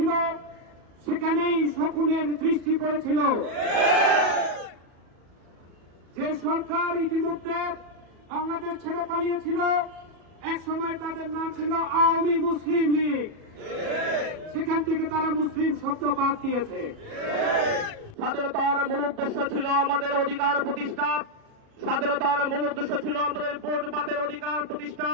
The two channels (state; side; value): late; left; 37 ms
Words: সেখানেই শকুনের দৃষ্টি পড়েছিল। যে সরকার ইতিমধ্যে বাংলাদেশ ছেড়ে পালিয়েছিল, এক সময় তাদের নাম ছিল আওয়ামী মুসলিম লীগ, সেখান থেকে তারা মুসলিম শব্দ বাদ দিয়েছে। স্বাধীনতার মূল উদ্দেশ্য ছিল আমাদের অধিকার প্রতিষ্ঠা, স্বাধীনতার মূল উদ্দেশ্য ছিল আমাদের ভোট বাতের অধিকার প্রতিষ্ঠা,